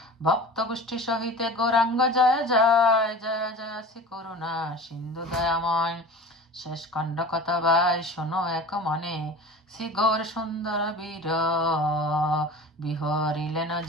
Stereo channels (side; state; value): both; normal; correlation 0.37